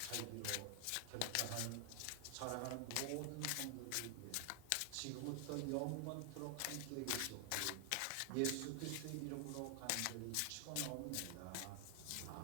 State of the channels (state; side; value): different; both; correlation 0.00